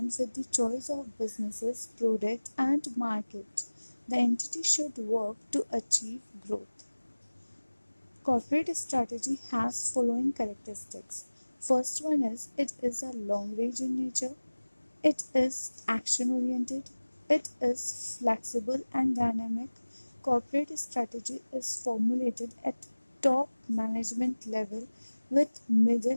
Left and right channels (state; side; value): inverted; both; correlation -1.00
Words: with the choice of businesses, product, and market. The entity should work to achieve growth. Corporate strategy has following characteristics. First one is it is a long range in nature, it is action oriented, it is flexible and dynamic. Corporate strategy is formulated at top management level with